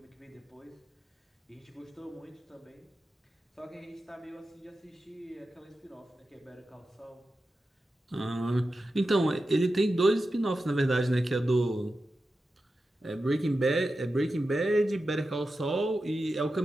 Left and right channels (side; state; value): both; normal; correlation 0.91